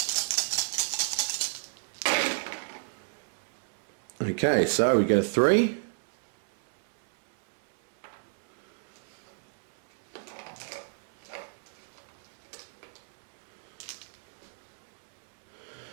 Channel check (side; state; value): left; silent; 57 dB below the other